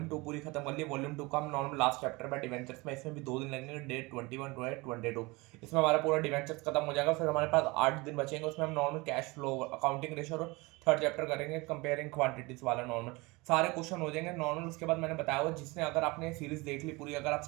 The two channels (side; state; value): left; quieter; 24.3 dB